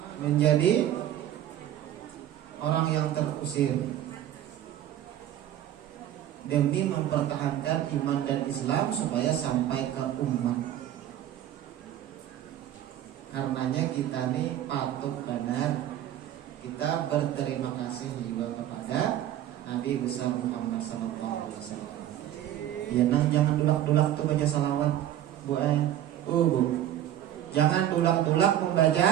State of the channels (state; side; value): quieter; left; 11.9 dB